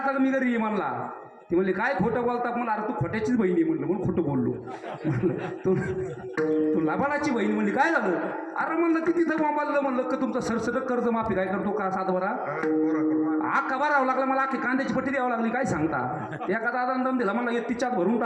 मी घरी ये म्हणला. ती म्हणली काय खोटं बोलता मला. अरे तू खोट्याचीच बहिणी म्हणलं, म्हणून खोटं बोललो. म्हणलं तू लाभाडाची बहीण म्हणली. काय झालं? अरे म्हणलं ती तिथं मोबाईल म्हणलं का तुमचं सरसकट कर्ज माफी काय करतो का सातबारा आका भरावं लागला मला, आखी कांद्याची पट्टी द्यावं लागली. काय सांगता? एका दादा दम दिला म्हणला तिच्यात भरून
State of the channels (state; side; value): identical; both; correlation 1.00